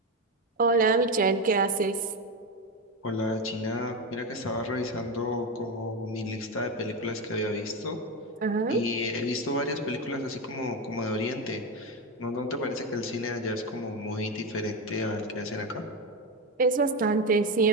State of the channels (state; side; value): normal; both; correlation 0.14